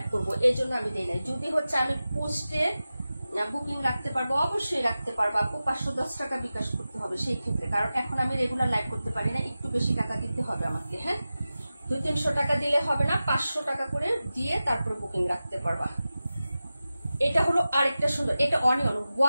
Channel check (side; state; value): both; inverted; correlation -0.95